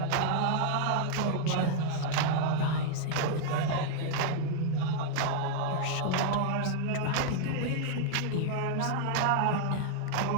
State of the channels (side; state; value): both; different; correlation -0.01